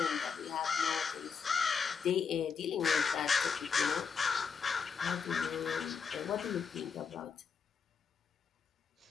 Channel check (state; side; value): quieter; right; 6.0 dB